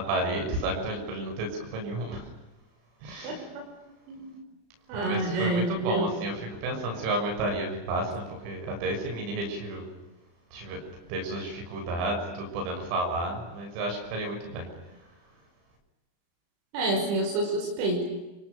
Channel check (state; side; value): late; left; 35 ms